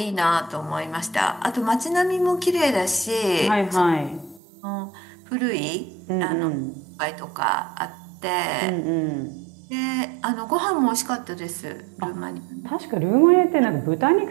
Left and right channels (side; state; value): left; drops out; at 4.4 s